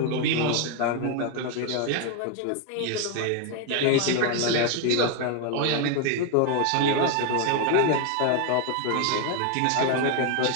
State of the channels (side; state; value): both; different; correlation 0.01